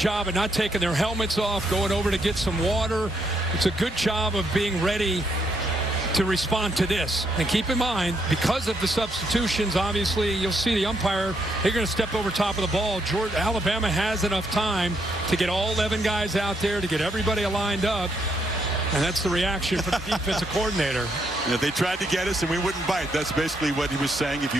of not taking their helmets off, going over to get some water. It's a good job of being ready to respond to this. And keep in mind, because of the substitutions, obviously, you'll see the umpire, they're going to step over top of the ball. Alabama has enough time to get all 11 guys out there, to get everybody lined up. And that's the reaction from the defensive coordinator. Yeah, they tried to get us and we wouldn't bite. That's basically what he was saying if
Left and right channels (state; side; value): normal; both; correlation 0.76